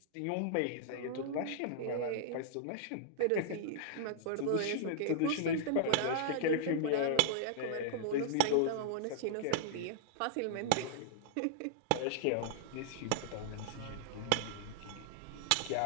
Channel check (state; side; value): different; both; correlation -0.01